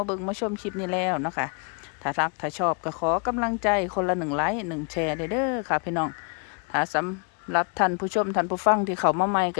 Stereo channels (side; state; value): right; quieter; 38.0 dB